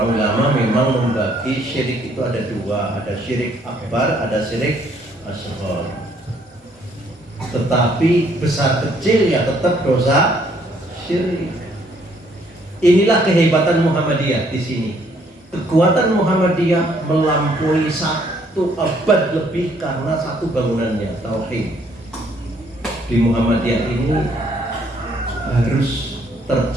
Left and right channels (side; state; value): both; normal; correlation 0.66